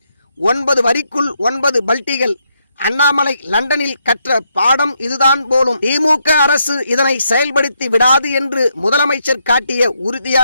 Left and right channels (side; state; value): both; inverted; correlation -0.78